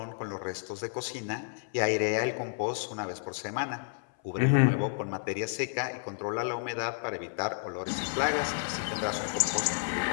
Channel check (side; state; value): right; silent; 57 dB below the other